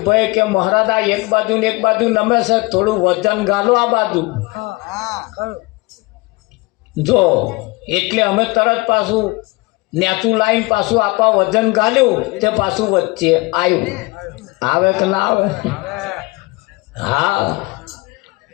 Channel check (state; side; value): quieter; right; 23.7 dB